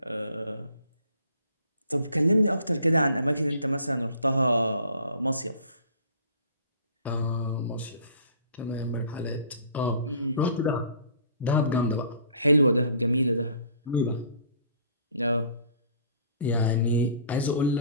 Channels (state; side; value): inverted; both; correlation -0.52